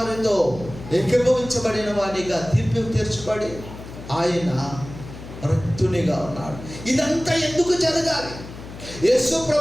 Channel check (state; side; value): noise; left; hum, 14 dB below the sound